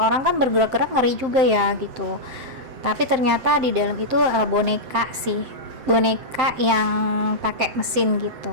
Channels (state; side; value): late; left; 7.6 ms